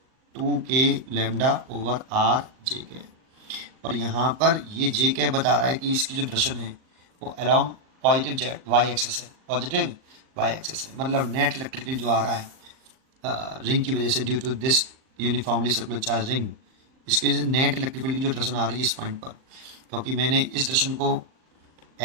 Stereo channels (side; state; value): left; late; 38 ms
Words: 2 के लैम्डा ओवर आर जे के, और यहाँ पर ये जे के बता रहा है कि इसकी जो डायरेक्शन है वो along positive z y axis है, पॉजिटिव वाई एक्सेस है, मतलब नेट इलेक्ट्रिक फील्ड जो आ रहा है रिंग की वजह से, due to this uniformly circular charge ring, इसकी वजह से नेट इलेक्ट्रिक फील्ड की जो डायरेक्शन आ रही है इस पॉइंट पर, क्योंकि मैंने इस डायरेक्शन को